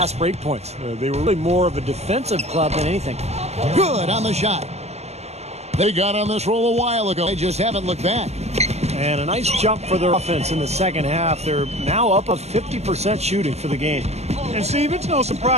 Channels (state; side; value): late; left; 0.31 ms